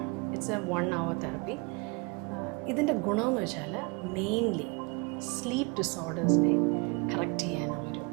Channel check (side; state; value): left; quieter; 30.0 dB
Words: It's a 1 hour therapy. ഇതിൻ്റെ ഗുണമെന്ന് വെച്ചാൽ മെയിൻലി സ്ലീപ്പ് ഡിസോർഡേഴ്സിനെ കറക്റ്റ് ചെയ്യാനുള്ളൊരു